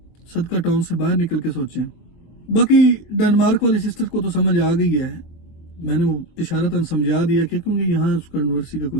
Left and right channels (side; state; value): right; late; 23 ms